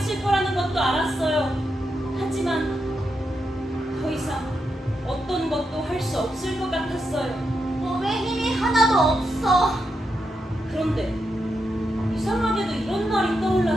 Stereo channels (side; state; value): both; normal; correlation 0.84